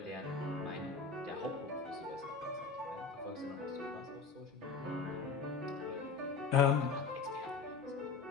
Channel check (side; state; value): right; quieter; 4.9 dB